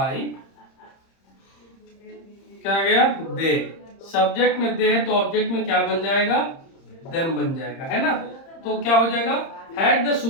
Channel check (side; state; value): right; late; 30 ms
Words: क्या आ गया, दे। सब्जेक्ट में दे है तो ऑब्जेक्ट में क्या बन जाएगा, देम बन जाएगा, है ना। तो क्या हो जाएगा, had the